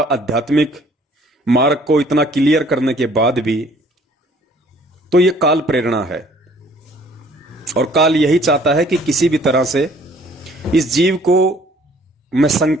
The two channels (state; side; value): normal; both; correlation 0.57